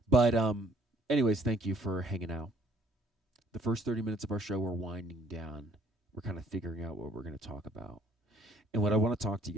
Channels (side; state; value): both; normal; correlation 0.61